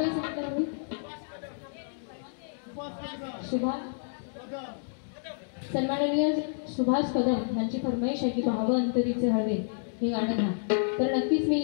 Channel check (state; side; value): silent; right; digital silence